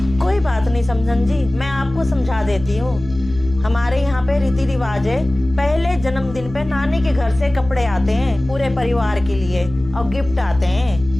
कोई बात नहीं समधन जी, मैं आपको समझा देती हूँ। हमारे यहाँ पे रीति रिवाज है, पहले जन्मदिन पे नानी के घर से कपड़े आते हैं पूरे परिवार के लिए और गिफ्ट आते हैं।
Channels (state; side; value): noise; left; hum, 14 dB below the sound